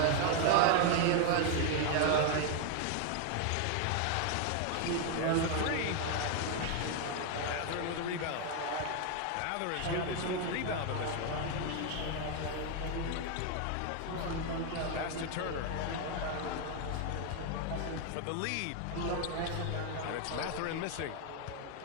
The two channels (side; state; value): both; different; correlation 0.01